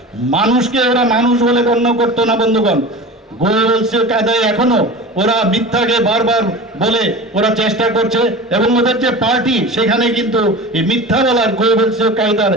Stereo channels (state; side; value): normal; both; correlation 0.33